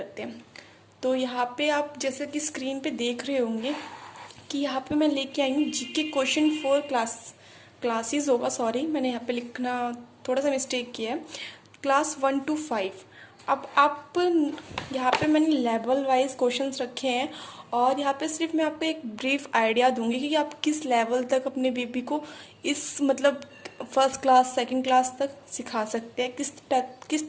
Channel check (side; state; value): both; identical; correlation 1.00